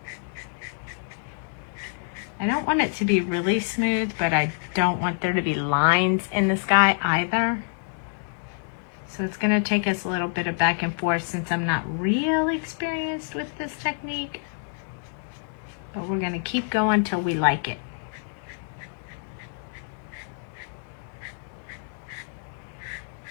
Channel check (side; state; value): right; silent; digital silence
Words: I don't want it to be really smooth, but I don't want there to be lines in the sky either. So it's going to take us a little bit of back and forth since I'm not really experienced with this technique. But we're going to keep going till we like it.